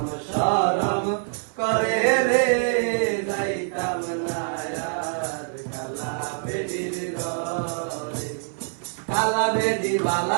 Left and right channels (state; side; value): silent; left; 56 dB below the other